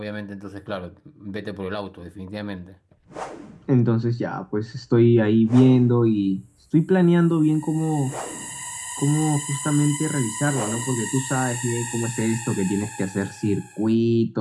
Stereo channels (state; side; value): identical; both; correlation 1.00